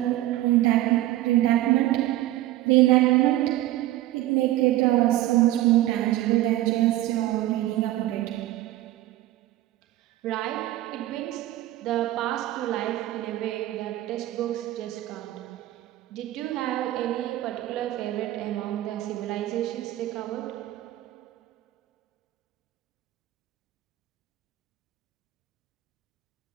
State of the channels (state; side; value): quieter; left; 15.3 dB